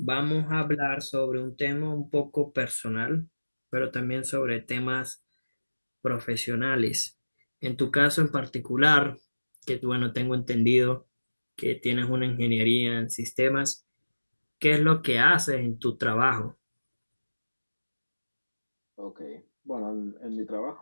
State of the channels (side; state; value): both; inverted; correlation -1.00